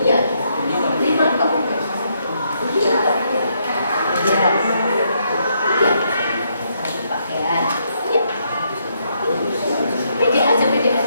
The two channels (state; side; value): inverted; both; correlation -0.75